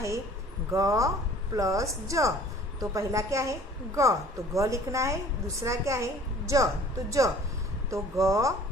ग प्लस ज, तो पहला क्या है ग, तो ग लिखना है। दूसरा क्या है ज, तो ज, तो ग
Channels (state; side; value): normal; both; correlation 0.50